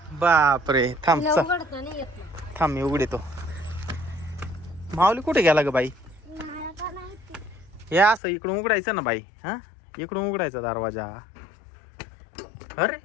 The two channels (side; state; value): right; drops out; at 8.2 s